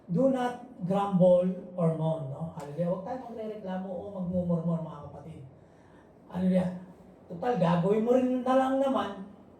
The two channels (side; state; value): both; identical; correlation 1.00